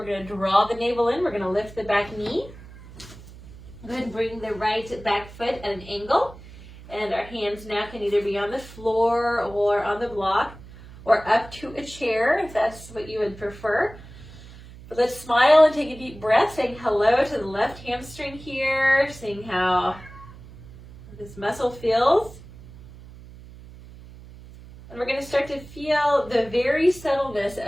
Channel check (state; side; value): noise; right; hum, 18 dB below the sound